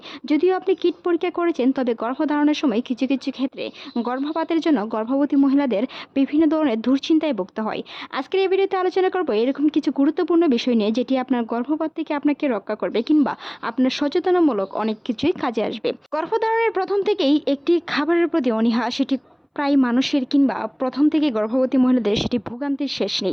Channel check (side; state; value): both; identical; correlation 1.00